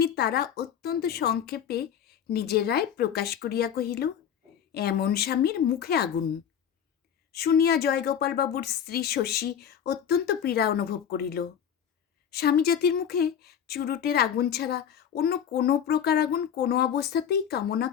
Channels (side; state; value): right; quieter; 8.7 dB